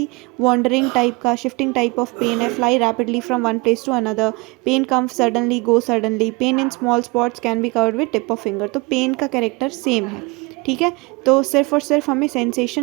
वॉन्डरिंग टाइप का, शिफ्टिंग टाइप ऑफ पेन है, fly rapidly from one place to another, pain comes suddenly, go suddenly, pain in small spots can be covered with tip of finger. तो pain का कैरेक्टर सेम है, ठीक है। तो सिर्फ और सिर्फ हमें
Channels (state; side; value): quieter; left; 26.7 dB